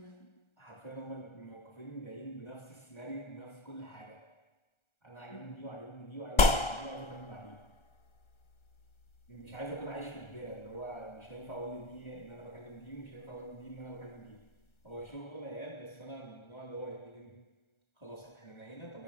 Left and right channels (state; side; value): late; right; 1.3 ms